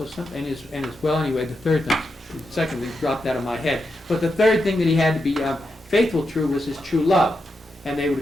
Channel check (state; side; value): normal; both; correlation 0.86